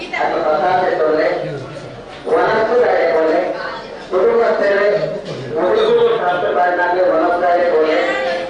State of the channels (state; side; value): identical; both; correlation 1.00